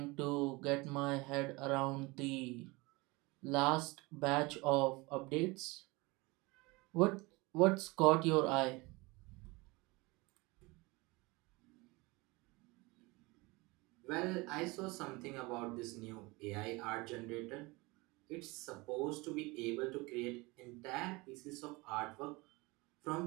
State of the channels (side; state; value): left; quieter; 24.2 dB